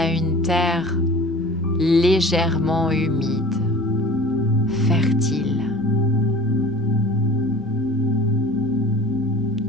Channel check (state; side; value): normal; both; correlation 0.41